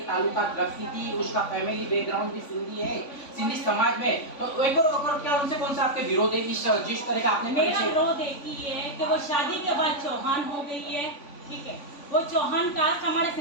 ताल्लुकात रखती थी, उसका फैमिली बैकग्राउंड भी सिंधी है, सिंधी समाज में, तो एक और क्या उनसे कौन सा आपके विरोध है? जिस तरह का आपने मेरा विरोध एक ही है कि वो शादी के बाद चौहान हो गई है, ठीक है, वो चौहान कास्ट हमारे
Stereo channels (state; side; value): late; right; 3.5 ms